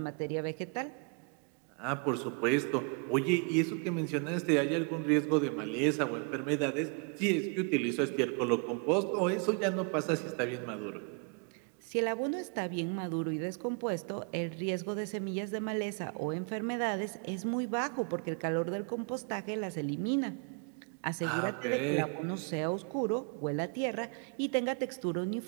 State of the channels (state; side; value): quieter; left; 37.3 dB